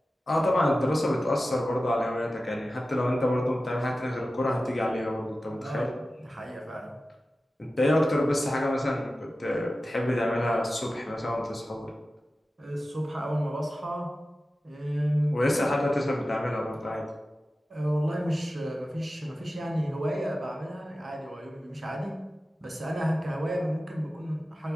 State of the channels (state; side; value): normal; both; correlation 0.94